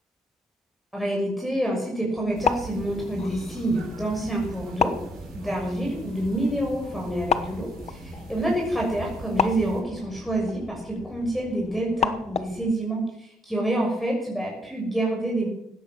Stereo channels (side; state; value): both; normal; correlation 0.72